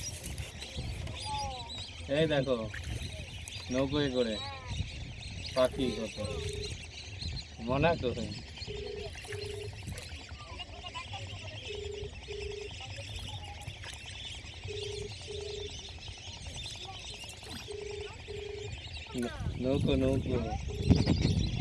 এই দেখো নৌকোয় করে পাখি কত মনে তো। নৌকো নৌকো।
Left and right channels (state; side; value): identical; both; correlation 1.00